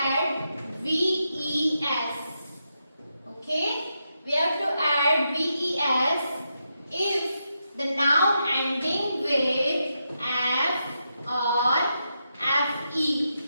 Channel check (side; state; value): both; inverted; correlation -0.85